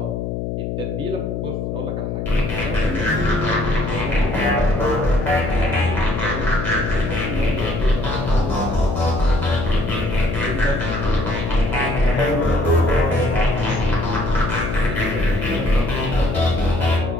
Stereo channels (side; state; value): left; noise; hum, 3 dB below the sound